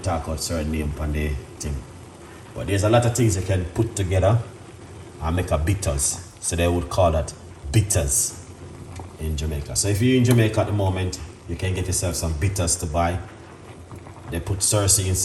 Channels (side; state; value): both; identical; correlation 1.00